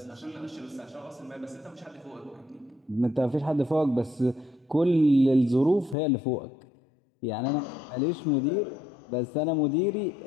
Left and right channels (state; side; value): drops out; right; at 6.0 s